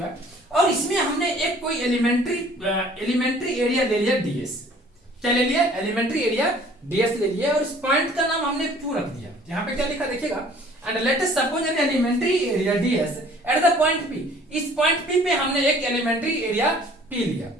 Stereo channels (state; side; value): normal; both; correlation 0.53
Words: है, और इसमें हमने एक कोई एलिमेंट्री एरिया ले लिया डीएस, क्या ले लिया एलिमेंट्री एरिया डीएस ले लिया, और इस पॉइंट का नाम हमने क्यू रख दिया। यहाँ पे क्या लिखा देखिएगा, and let us suppose an elementary area ds at the point P, इस पॉइंट पी पे हमने एक एलिमेंट्री एरिया पी लिया